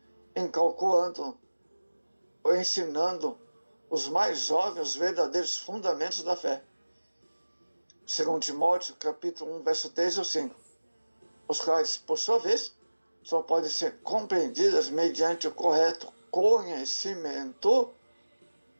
incalculando ou ensinando os mais jovens os verdadeiros fundamentos da fé. Segundo Timóteo, capítulo 1, verso 3 ou 5, os quais, por sua vez, só podem ser compreendidas mediante o correto conhecimento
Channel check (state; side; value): inverted; both; correlation -1.00